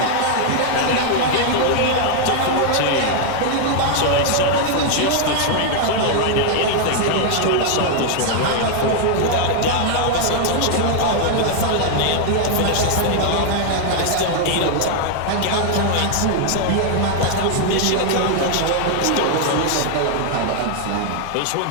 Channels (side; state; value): both; different; correlation 0.00